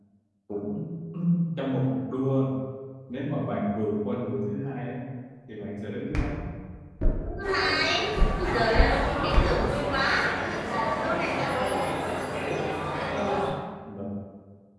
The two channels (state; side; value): identical; both; correlation 1.00